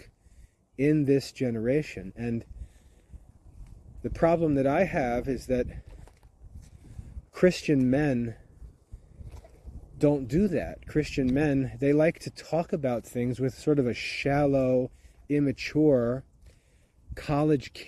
in this generation. And the problem that I have is that Christian men don't do that. Christian men, they like to talk about things with sort of a shallow, immature, college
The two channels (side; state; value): both; identical; correlation 1.00